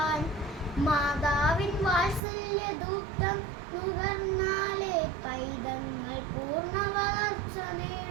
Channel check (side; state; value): left; drops out; at 2.2 s